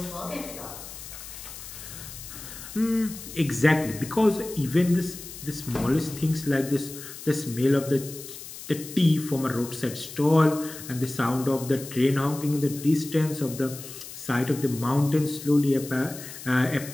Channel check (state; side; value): noise; left; hiss, 13 dB below the sound